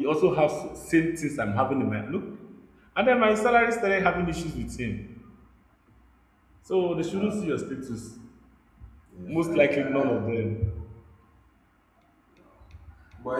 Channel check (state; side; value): identical; both; correlation 1.00